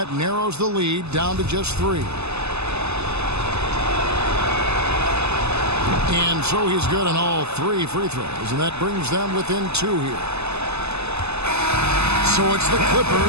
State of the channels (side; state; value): left; late; 0.80 ms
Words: narrows the lead down to just 3. And so he's good on all 3 free throws, and that brings them within 2 here. So it's the